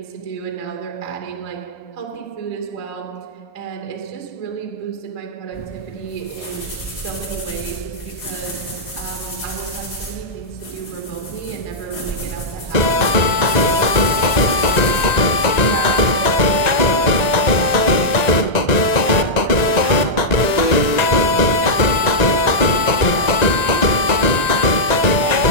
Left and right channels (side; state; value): right; late; 1.9 ms